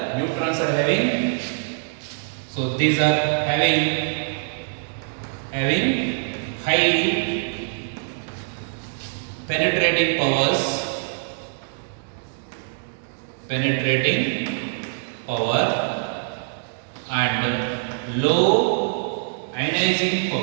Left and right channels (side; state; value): left; silent; digital silence